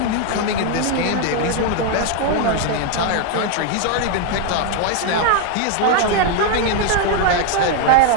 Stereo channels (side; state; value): both; different; correlation 0.01